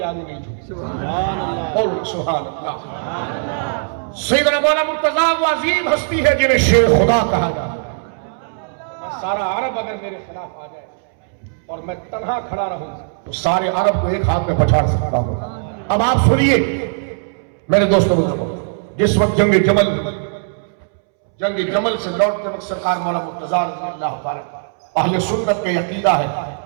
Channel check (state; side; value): silent; left; 67 dB below the other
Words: آگے نہیں جھکی. سبحان اللہ. اور سبحان اللہ. سیدنا مولا مرتضیٰ وہ عظیم ہستی ہے جنہیں شیر خدا کہا جاتا ہے. سارا عرب اگر میرے خلاف آ جائے اور میں تنہا کھڑا رہوں تو سارے عرب کو ایک ہاتھ میں پچھاڑ سکتا ہوں. اب آپ سنیے میرے دوستوں, جس وقت جنگ جمل سے لوٹتے وقت سرکار مولا مرتضیٰ رضی اللہ تعالیٰ, اہل سنت کا عقیدہ ہے